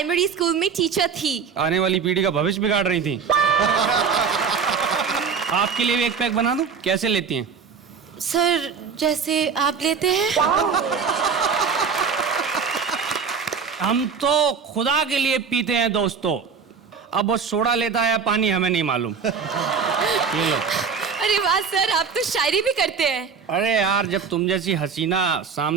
स्कूल में टीचर थी। आने वाली पीढ़ी का भविष्य बिगाड़ रही थी। आपके लिए भी एक पैक बना दूं? कैसे लेती हैं? सर, जैसे आप लेते हैं। हम तो खुदा के लिए पीते हैं दोस्तों। अब वो सोडा लेता है या पानी हमें नहीं मालूम। ये लो। अरे वाह सर, आप तो शायरी भी करते हैं। अरे यार, जब तुम जैसी हसीना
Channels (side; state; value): left; quieter; 6.0 dB